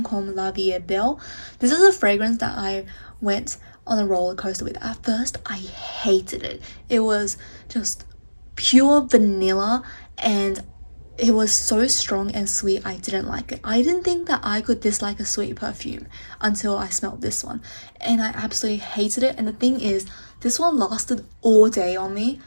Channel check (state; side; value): inverted; both; correlation -1.00